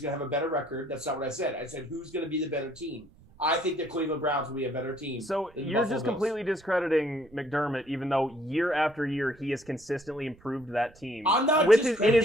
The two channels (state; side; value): noise; right; rumble, 26 dB below the sound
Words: going to have a better record? That's not what I said. I said who's going to be the better team. I think the Cleveland Browns will be a better team. So you're just completely discrediting McDermott, even though year after year he has consistently improved that team. I'm not in